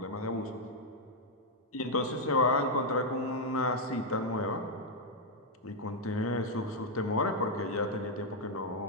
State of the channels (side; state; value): both; normal; correlation -0.01